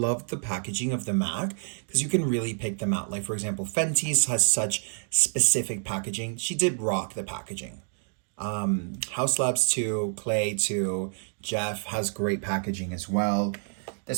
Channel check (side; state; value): left; silent; 56 dB below the other